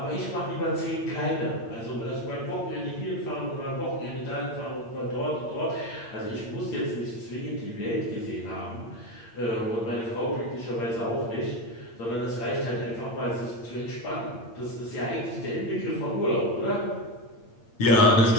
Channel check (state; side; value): late; right; 8.7 ms